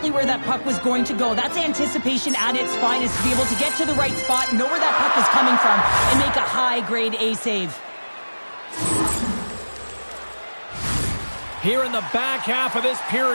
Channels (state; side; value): inverted; both; correlation -1.00